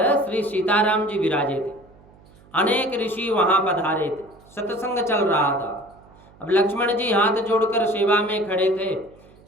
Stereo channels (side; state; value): right; noise; hum, 26 dB below the sound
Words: श्री सीताराम जी विराजे थे, अनेक ऋषि वहां पधारे थे, सत्संग चल रहा था। अब लक्ष्मण जी हाथ जोड़कर सेवा में खड़े थे।